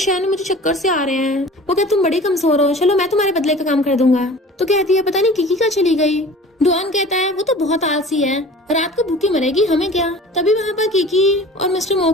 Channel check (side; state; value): both; normal; correlation 0.43